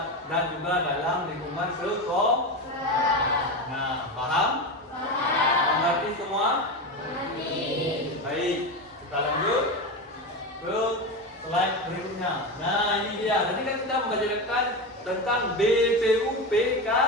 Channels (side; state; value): both; normal; correlation 0.19